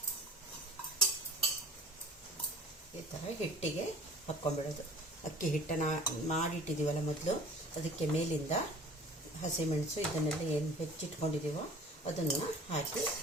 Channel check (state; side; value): normal; both; correlation 0.45